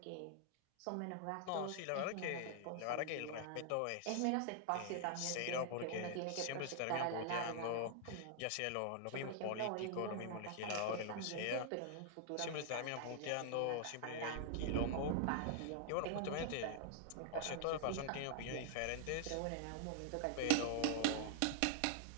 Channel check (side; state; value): both; different; correlation 0.00